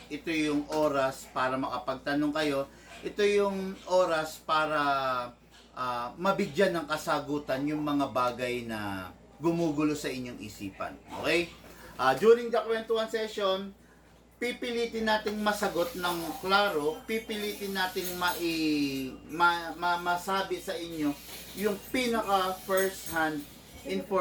Ito yung oras para makapagtanong kayo. Ito yung oras para mabigyan ng kasagutan yung mga bagay na gumugulo sa inyong isipan. Okay? During the kwentuhan session, pipilitin nating masagot ng klaro, pipilitin nating masabi sa inyo yung pinaka first hand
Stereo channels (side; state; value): both; identical; correlation 1.00